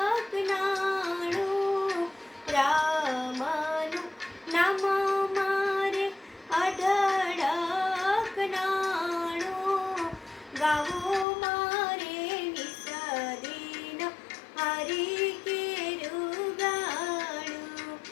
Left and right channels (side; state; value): right; drops out; at 11.2 s